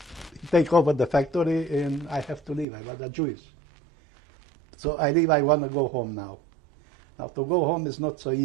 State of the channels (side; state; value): left; drops out; at 2.7 s